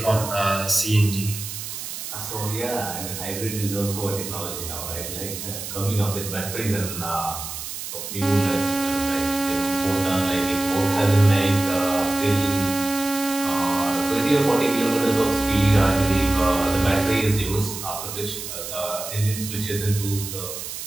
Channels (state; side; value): noise; right; hiss, 8 dB below the sound